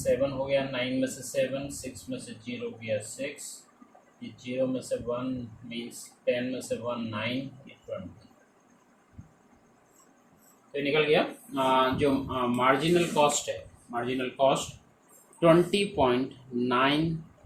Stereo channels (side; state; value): both; identical; correlation 1.00